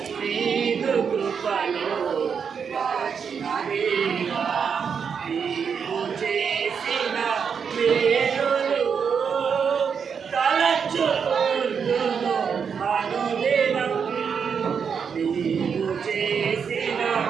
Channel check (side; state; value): left; quieter; 6.6 dB